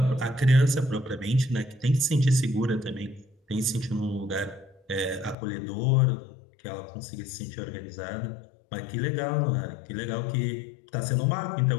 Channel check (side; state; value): right; drops out; at 5.4 s